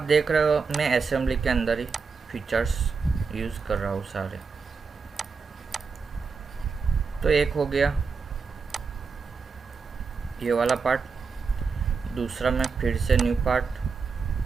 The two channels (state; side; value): quieter; left; 5.1 dB